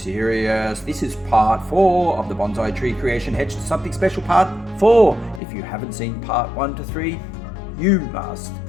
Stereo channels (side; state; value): right; drops out; at 5.4 s